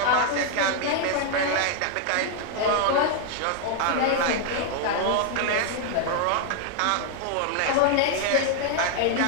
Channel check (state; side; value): different; both; correlation 0.00